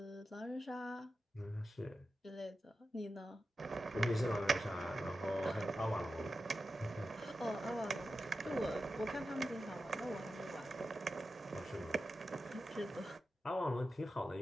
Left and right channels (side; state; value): both; normal; correlation 0.92